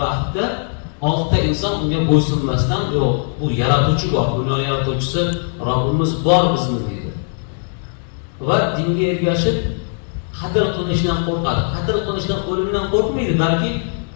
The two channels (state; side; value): silent; right; digital silence